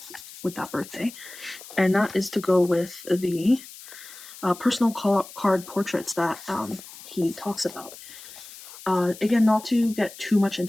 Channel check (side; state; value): left; noise; hiss, 16 dB below the sound